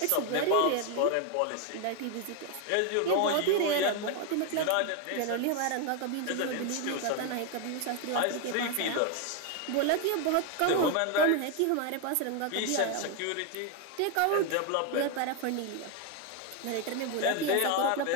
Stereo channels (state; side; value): different; both; correlation 0.01